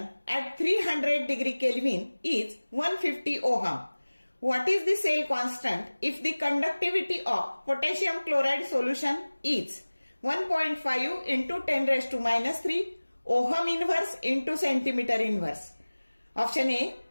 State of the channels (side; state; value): both; inverted; correlation -1.00